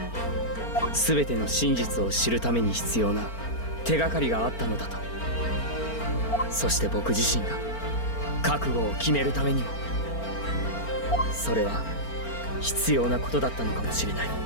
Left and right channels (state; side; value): late; right; 4.4 ms